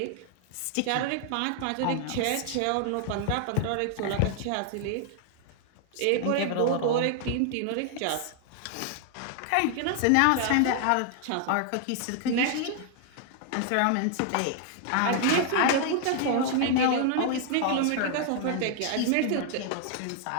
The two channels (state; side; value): different; both; correlation 0.00